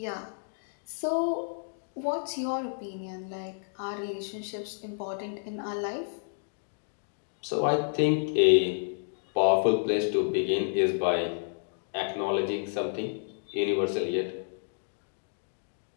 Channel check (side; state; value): right; silent; digital silence